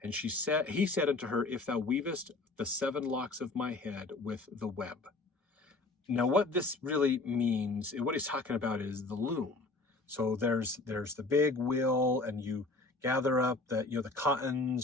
And he said unto her, if thou weavest the 7 locks of my head with the web. Now what this really means, what he's talking about is the loom. So there's the big wheel, and you gather up the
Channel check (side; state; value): right; quieter; 3.3 dB